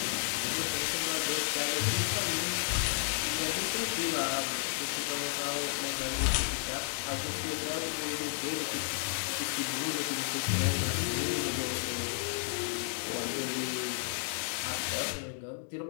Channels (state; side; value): silent; right; digital silence